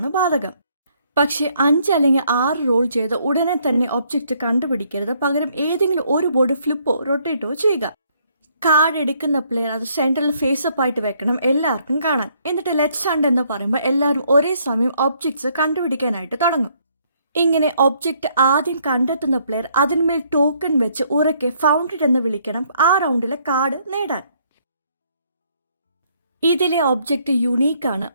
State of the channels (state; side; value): inverted; both; correlation -0.68